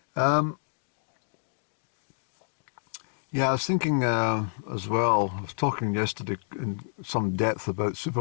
Yeah, I was thinking as well. I was talking yesterday in some depth about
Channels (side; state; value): right; silent; 59 dB below the other